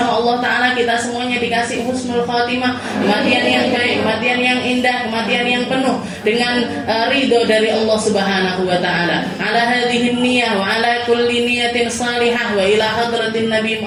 Allah Ta'ala kita semuanya dikasih husnul khatimah, kematian yang baik, kematian yang indah, kematian yang penuh dengan ridho dari Allah Subhanahu wa Ta'ala. Ala hadhihi niyah wa ala kulli niyatin salihah wa ila hadratin Nabi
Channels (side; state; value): both; identical; correlation 1.00